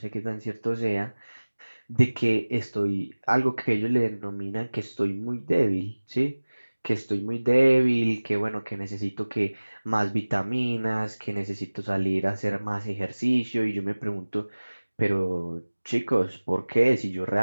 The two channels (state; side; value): inverted; both; correlation -1.00